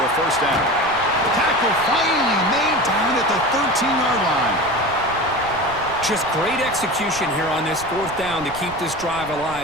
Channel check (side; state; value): right; noise; rumble, 17 dB below the sound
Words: a 1st down. Tackle finally made down at the 13-yard line. Just great execution here on this fourth down to keep this drive